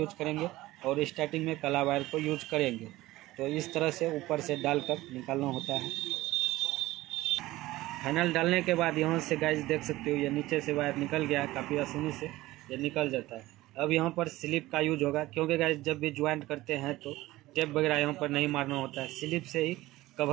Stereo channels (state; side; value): quieter; left; 17.7 dB